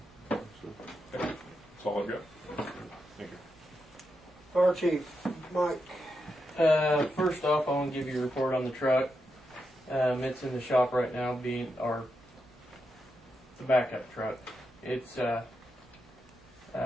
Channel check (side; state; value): both; normal; correlation 0.85